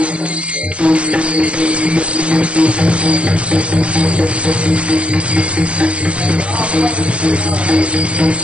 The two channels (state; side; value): late; left; 0.061 ms